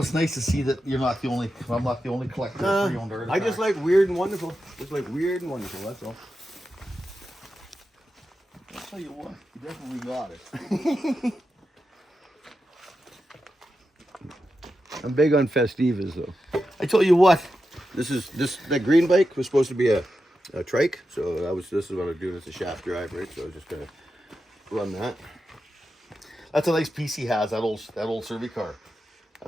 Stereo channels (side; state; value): both; normal; correlation 0.89